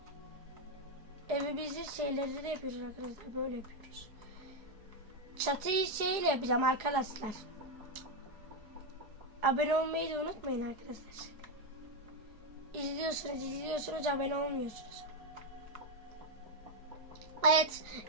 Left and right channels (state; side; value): late; left; 4.8 ms